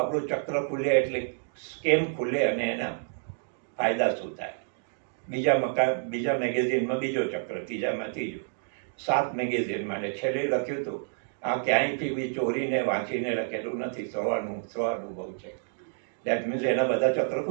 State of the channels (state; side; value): silent; left; digital silence